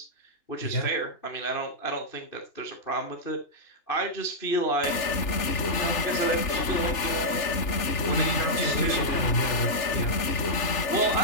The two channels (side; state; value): right; late; 3.4 ms